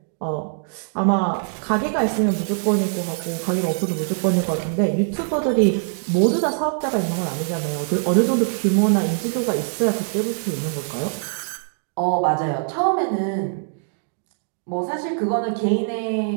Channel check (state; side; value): silent; left; digital silence